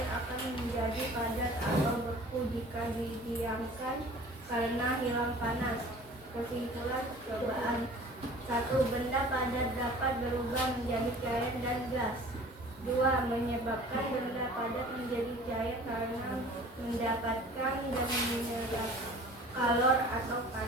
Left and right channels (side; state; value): both; normal; correlation 0.45